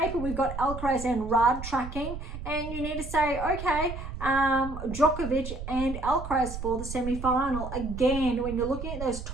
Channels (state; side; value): noise; right; rumble, 8 dB below the sound